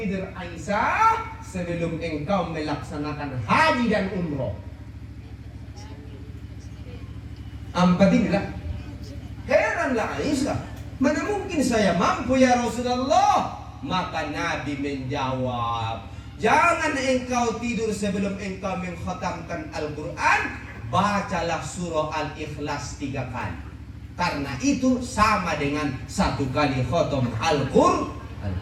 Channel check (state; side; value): identical; both; correlation 1.00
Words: Aisyah sebelum engkau melaksanakan haji dan umroh. 4 inilah. Heranlah Aisyah, mana mungkin saya mampu ya Rasulullah? Maka Nabi menjawab, jangan engkau tidur sebelum engkau mengkhatamkan Al-Quran. Bacalah surah Al-Ikhlas 3 kali, karena itu sama dengan 1 kali khatam Al-Quran.